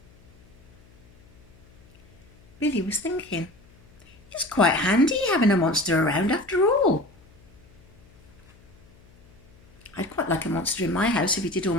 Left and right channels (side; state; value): left; noise; hum, 27 dB below the sound